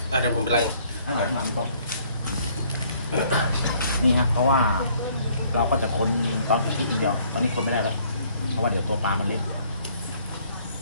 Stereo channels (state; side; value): inverted; both; correlation -0.62